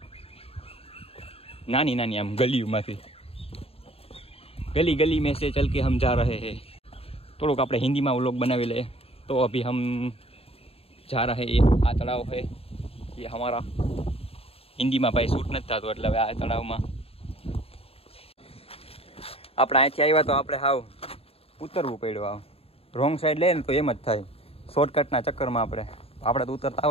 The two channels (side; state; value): right; late; 0.28 ms